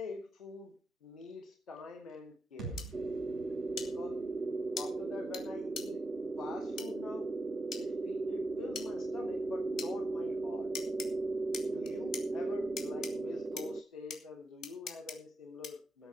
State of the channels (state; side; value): normal; both; correlation 0.87